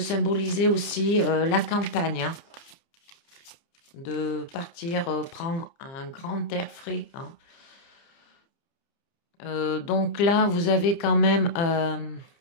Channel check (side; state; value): right; late; 29 ms